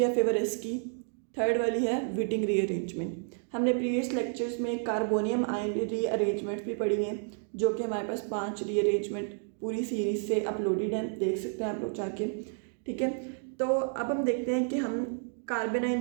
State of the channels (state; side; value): silent; left; 57 dB below the other